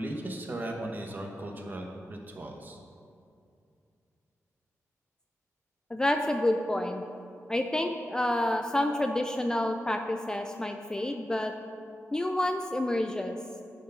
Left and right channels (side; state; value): both; normal; correlation 0.92